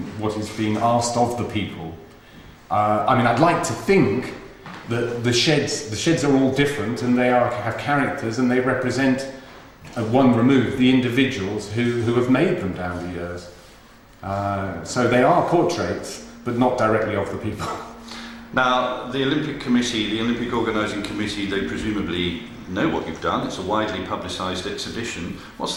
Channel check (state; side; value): identical; both; correlation 1.00